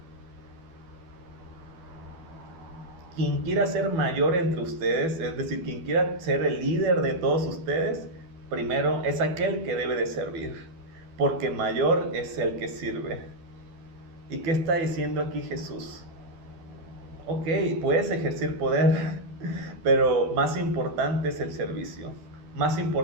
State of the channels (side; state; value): left; late; 12 ms